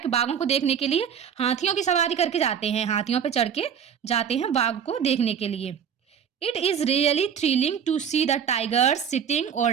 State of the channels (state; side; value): quieter; left; 7.9 dB